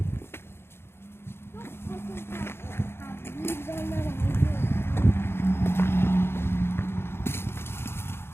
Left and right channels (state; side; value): late; right; 0.12 ms